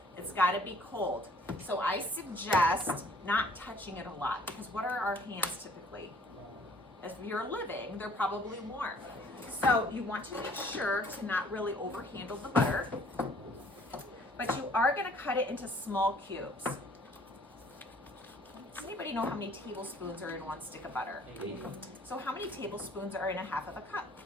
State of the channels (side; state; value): both; normal; correlation 0.57